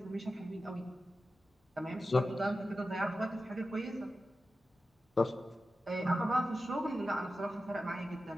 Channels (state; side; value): normal; both; correlation 0.93